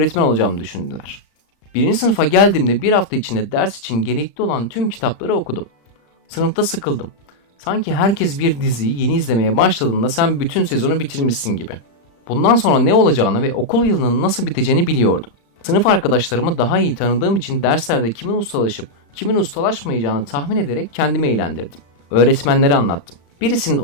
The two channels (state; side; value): late; right; 35 ms